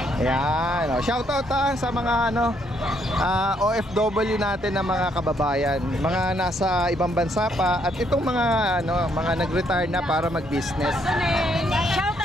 Ayan, shoutout sa mga OFW natin na mga kababayan, mga nasa ibang bansa pa at itong mga mga nag-retire na para mag-business.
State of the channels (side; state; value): both; normal; correlation 0.71